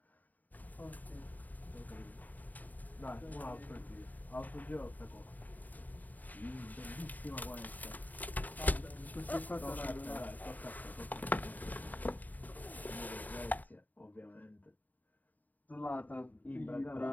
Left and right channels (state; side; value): late; right; 0.081 ms